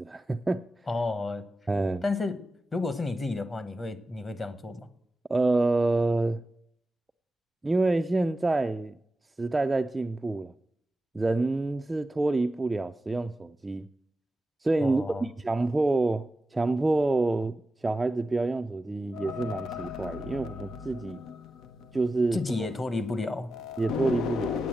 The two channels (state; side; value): normal; both; correlation 0.92